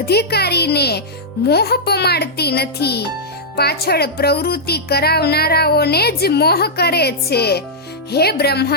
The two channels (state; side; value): normal; both; correlation -0.09